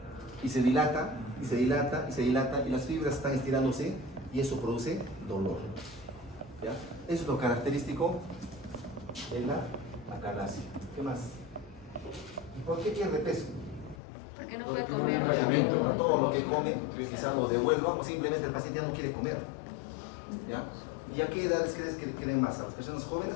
y se dilata, y se dilata, y se dilata, y las fibras están estirándose y eso produce dolor. ¿Ya? Eso es lo característico de la acalasia. ¿Qué más? ¿Por qué pierde peso? Porque no puede comer. Obviamente, todo lo que come quizás lo devuelva o simplemente el paciente ya no quiere comer. ¿Ya? ¿Y a qué edades crees que quieren más? ¿A las personas jóvenes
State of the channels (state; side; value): drops out; right; at 14.0 s